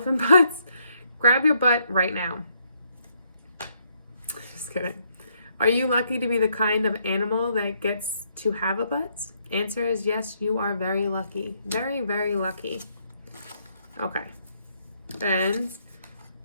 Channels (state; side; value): inverted; both; correlation -0.72